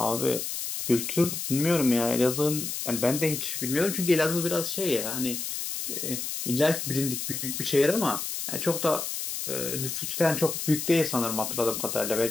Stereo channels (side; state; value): left; noise; hiss, 4 dB below the sound